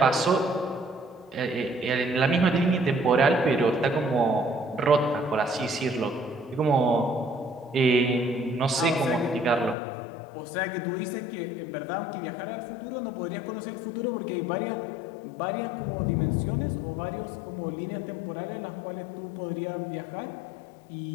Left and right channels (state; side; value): drops out; right; at 9.8 s